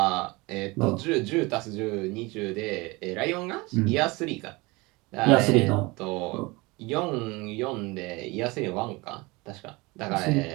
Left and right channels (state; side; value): quieter; left; 24.1 dB